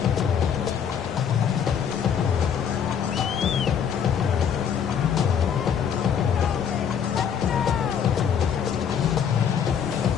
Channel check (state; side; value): quieter; right; 7.8 dB